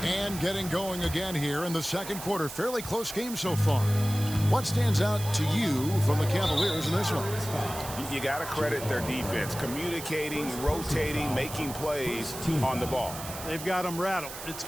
And getting going again here in the second quarter. Fairly close game so far. What stands out to you from the Cavaliers in this one? You got to credit their defense. Communicating, rotating, making plays on the ball. They've got them rattled. It's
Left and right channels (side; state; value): right; noise; hiss, 11 dB below the sound